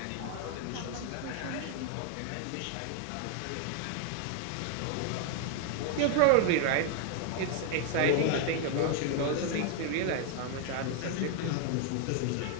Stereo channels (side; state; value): both; different; correlation 0.00